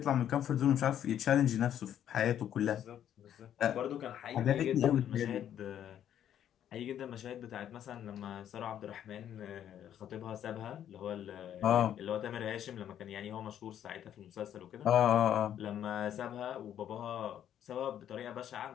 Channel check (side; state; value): right; quieter; 10.3 dB